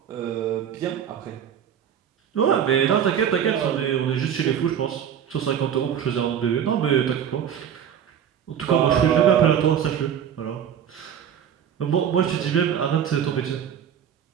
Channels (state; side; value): quieter; left; 8.8 dB